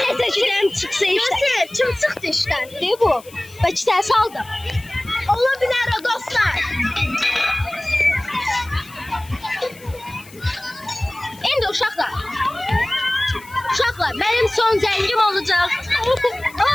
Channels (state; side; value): noise; left; hiss, 22 dB below the sound